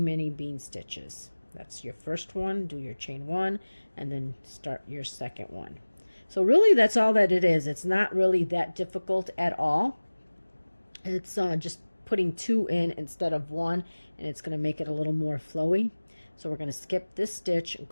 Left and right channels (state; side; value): inverted; both; correlation -1.00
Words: bean stitches. That's your first one. Do your chain one, and then start your second one. So really that's all that it is. It's not really that difficult at all. It's just putting 2 in instead of 1, and it's going to make it a little more flowy. So we're going to skip this stitch,